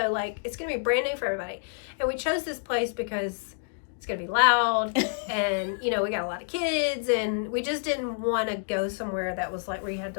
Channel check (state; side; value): silent; right; digital silence